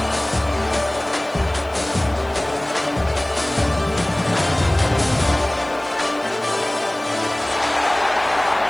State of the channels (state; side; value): noise; left; hiss, 28 dB below the sound